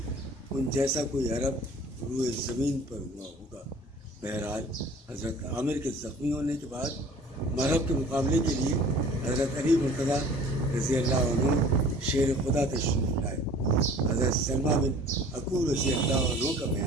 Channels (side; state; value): both; normal; correlation 0.48